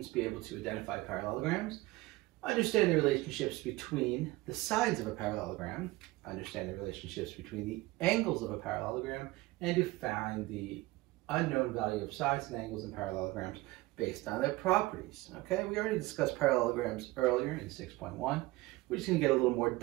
to be able to identify parallelograms, understand the relationships between the sides of a parallelogram, understand the relationships between the angles of a parallelogram, and to find the unknown value of sides and angles in parallelograms based on their properties. Okay, we already discussed parallelograms earlier in 6.1. We're just going to get a little more,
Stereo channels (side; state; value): left; quieter; 19.9 dB